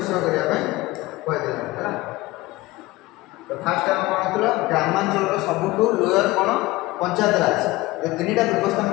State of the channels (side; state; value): right; quieter; 19.8 dB